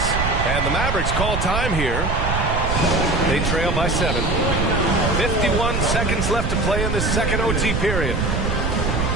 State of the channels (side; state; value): right; noise; rumble, 1 dB below the sound